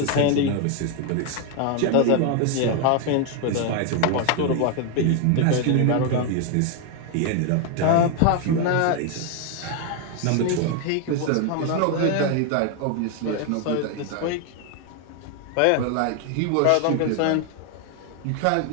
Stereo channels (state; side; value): different; both; correlation 0.01